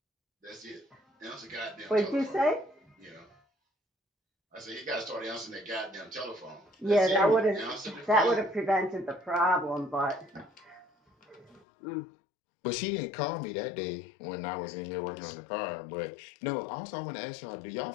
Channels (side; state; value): right; drops out; at 11.6 s